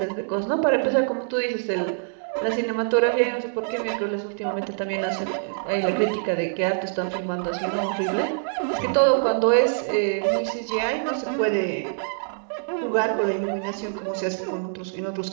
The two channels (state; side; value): silent; left; digital silence